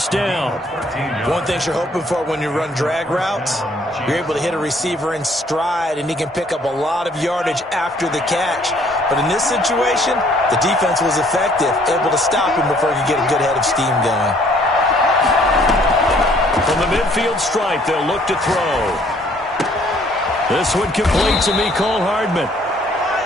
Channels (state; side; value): normal; both; correlation 0.62